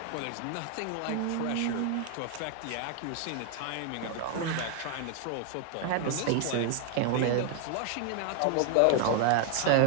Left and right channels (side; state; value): both; different; correlation 0.01